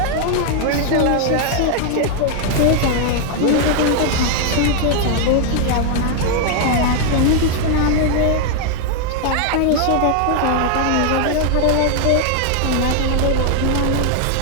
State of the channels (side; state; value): both; different; correlation 0.00